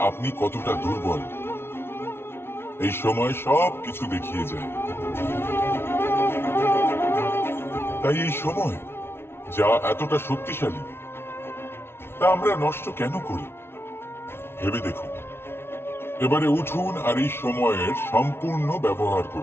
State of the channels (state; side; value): late; right; 0.12 ms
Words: আপনি কতটা দুর্বল। এই সময় সব কিছু দেখিয়ে যায়। তাই এই সময় যা এতটা শক্তিশালী, তা আমরা নষ্ট কেন করি? ভেবে দেখুন। এবারে উঠুন আর এই সময়ের সম্পূর্ণ ব্যবহার